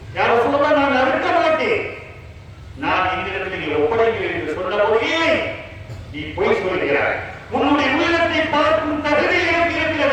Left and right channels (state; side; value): identical; both; correlation 1.00